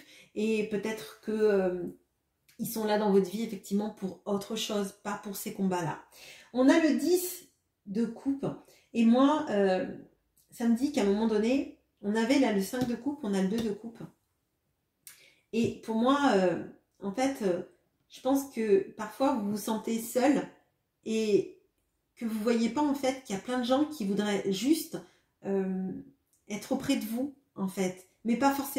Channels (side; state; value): both; identical; correlation 1.00